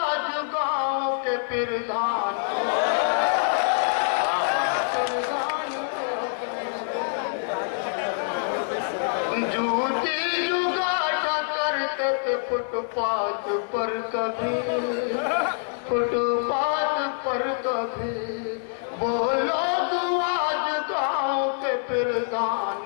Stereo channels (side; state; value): right; silent; 59 dB below the other